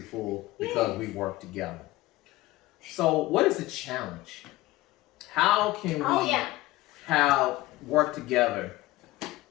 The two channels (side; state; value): right; quieter; 18.3 dB